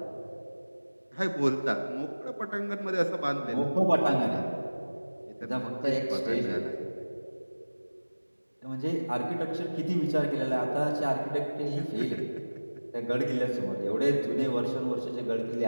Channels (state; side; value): inverted; both; correlation -1.00